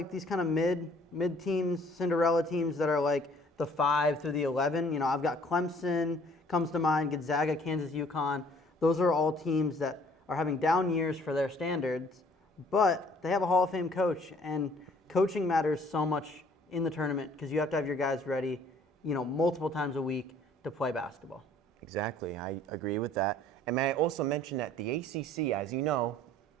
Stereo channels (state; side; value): normal; both; correlation 0.57